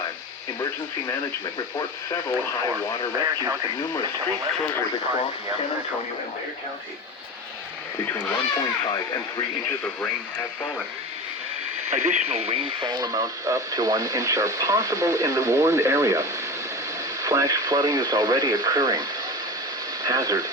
Emergency Management reports several high water rescues and numerous street closures across San Antonio and Bexar County. Between 1.5 and 3 inches of rain have fallen. Additional rainfall amounts up to 1 inch are possible in the warned area. Flash flooding is already occurring. Hazard,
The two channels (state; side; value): normal; both; correlation 0.28